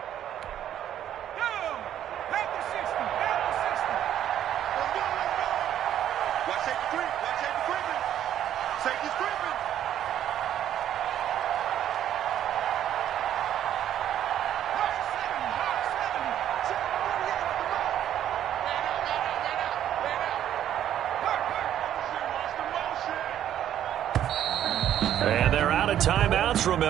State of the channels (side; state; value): left; quieter; 10.9 dB